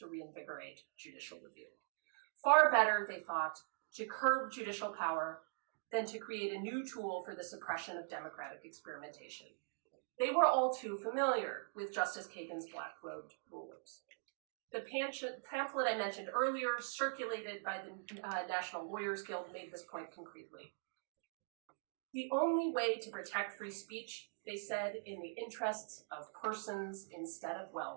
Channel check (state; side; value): silent; left; digital silence